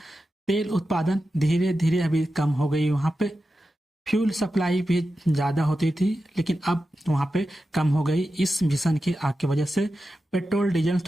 तेल उत्पादन धीरे धीरे अभी कम हो गई वहां पे। फ्यूल सप्लाई भी ज्यादा होती थी, लेकिन अब वहां पे कम हो गई इस भीषण की आग की वजह से। पेट्रोल डीजल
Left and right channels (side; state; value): both; normal; correlation 0.91